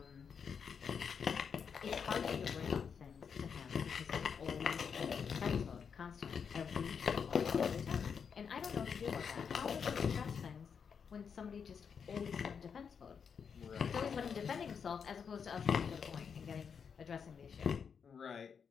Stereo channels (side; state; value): right; quieter; 6.6 dB